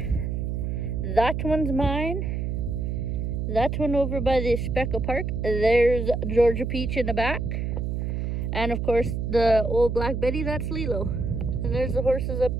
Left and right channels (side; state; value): right; noise; hum, 1 dB below the sound